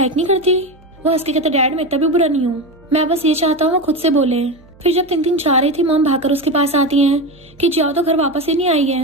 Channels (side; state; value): right; noise; hum, 27 dB below the sound